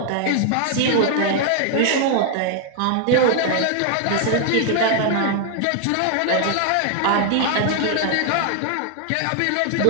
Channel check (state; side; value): different; both; correlation 0.00